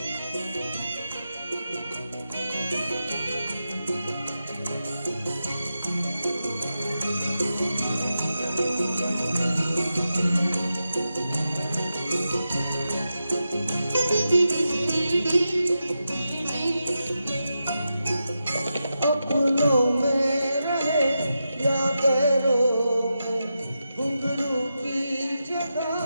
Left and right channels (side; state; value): both; inverted; correlation -0.89